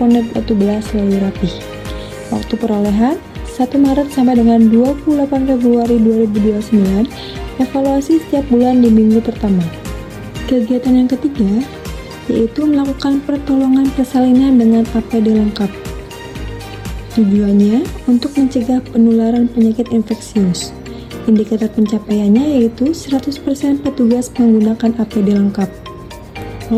Watu Belah selalu rapih. Waktu perolehan, 1 Maret sampai dengan 28 Februari 2029, evaluasi setiap bulan di minggu pertama. Kegiatan yang ketiga, yaitu melakukan pertolongan persalinan dengan APD lengkap. Tujuannya untuk mencegah penularan penyakit infeksius. Indikator pencapaiannya yaitu 100% petugas menggunakan APD lengkap.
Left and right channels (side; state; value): both; identical; correlation 1.00